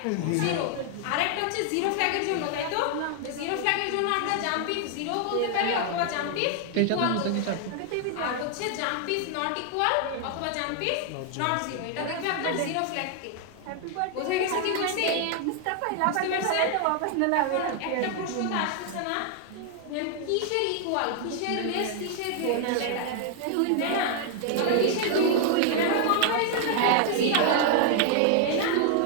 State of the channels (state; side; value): different; both; correlation 0.00